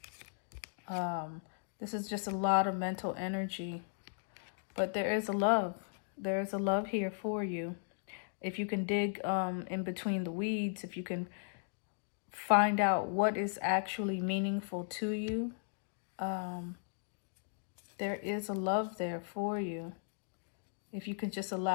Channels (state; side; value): silent; right; digital silence